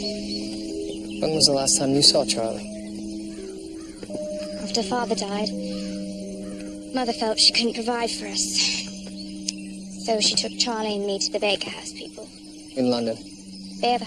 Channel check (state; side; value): identical; both; correlation 1.00